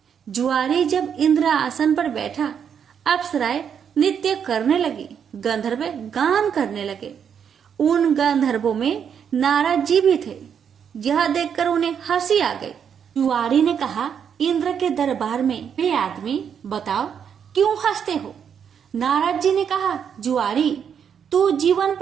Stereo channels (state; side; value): quieter; left; 7.8 dB